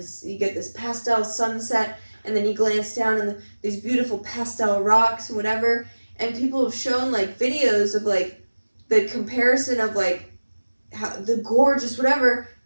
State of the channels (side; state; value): both; inverted; correlation -1.00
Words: you get this pastel sunset, and then you glance down and these beautiful pastel rocks and whatever, and people have shown like videos of like the comparison of like how the gorgeous whatever,